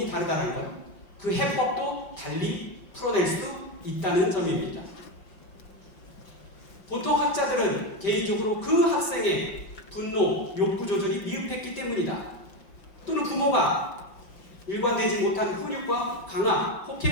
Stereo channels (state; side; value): late; right; 5.1 ms